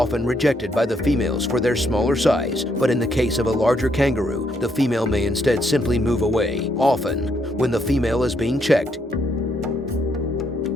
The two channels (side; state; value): both; normal; correlation 0.74